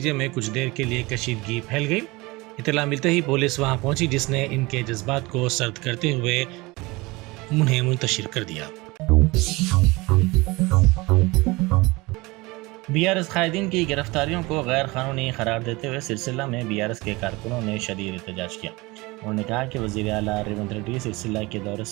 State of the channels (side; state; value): left; quieter; 23.1 dB